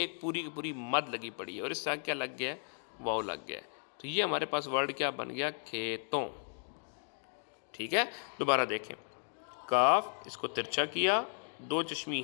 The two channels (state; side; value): silent; right; 54 dB below the other